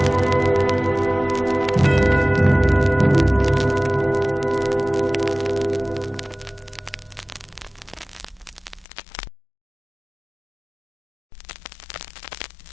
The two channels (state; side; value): drops out; right; at 8.8 s